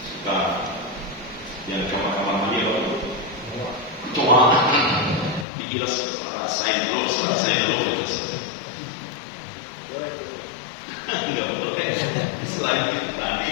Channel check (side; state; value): right; drops out; at 5.5 s